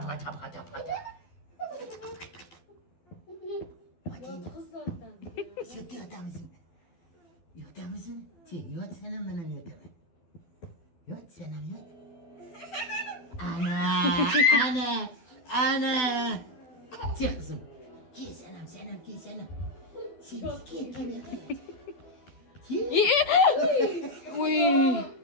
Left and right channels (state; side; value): late; right; 12 ms